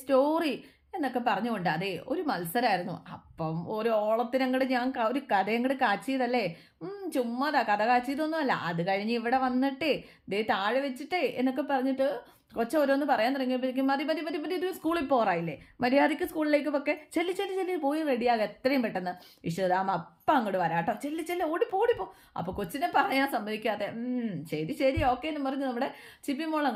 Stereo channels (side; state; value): both; identical; correlation 1.00